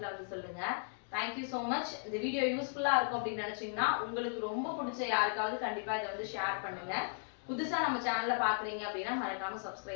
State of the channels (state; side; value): silent; right; digital silence